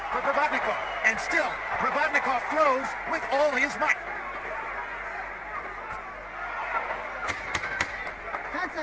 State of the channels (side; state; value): left; noise; hum, 24 dB below the sound